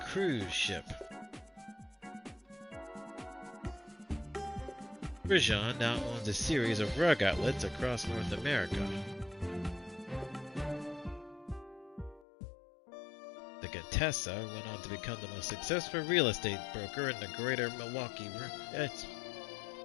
ship. Rajan now owns a series of rug outlets across North America. The Contessa went on to become the most successful real estate broker in the greater Milwaukee area.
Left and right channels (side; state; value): right; drops out; at 12.2 s